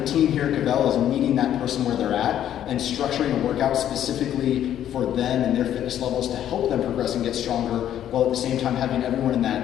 team here at Kvell is meeting that person where they're at and structuring a workout specifically for them and their fitness levels to help them progress and get stronger, while at the same time having everyone in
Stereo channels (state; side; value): quieter; right; 10.9 dB